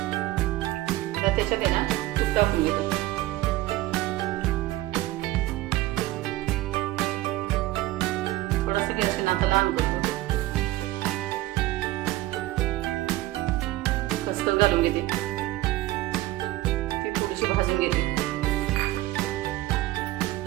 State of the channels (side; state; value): left; quieter; 16.9 dB